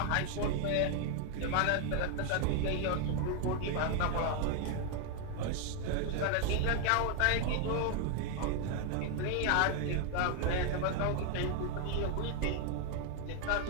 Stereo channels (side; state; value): both; different; correlation 0.01